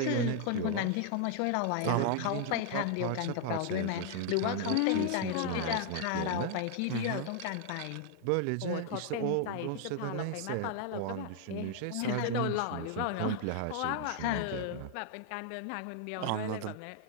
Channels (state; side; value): different; both; correlation 0.00